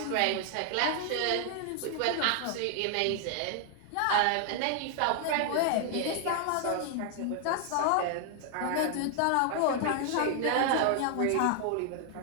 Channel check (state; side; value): different; both; correlation 0.00